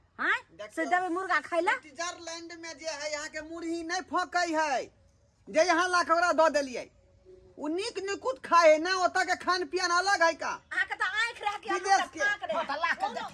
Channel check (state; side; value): identical; both; correlation 1.00